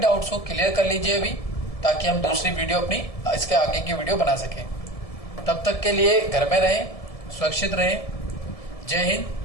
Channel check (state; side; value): late; right; 1.7 ms